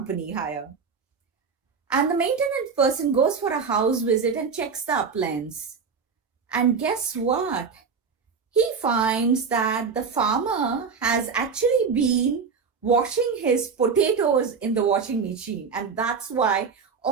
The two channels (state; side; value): quieter; left; 5.6 dB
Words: Haier. And the maintenance person goes for a house visit and checks the appliance. And guess what? He finds that the farmer has actually been washing his potatoes in the washing machine. And that's why